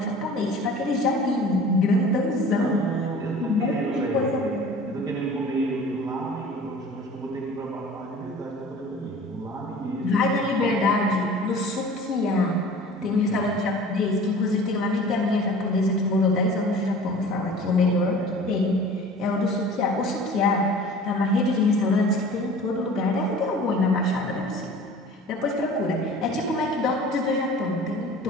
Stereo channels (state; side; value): normal; both; correlation 0.43